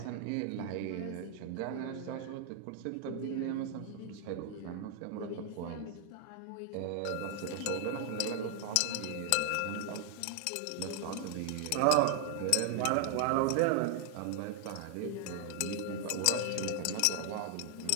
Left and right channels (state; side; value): different; both; correlation 0.00